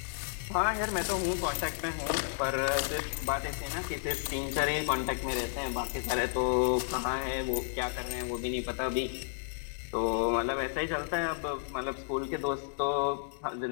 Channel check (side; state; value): right; silent; digital silence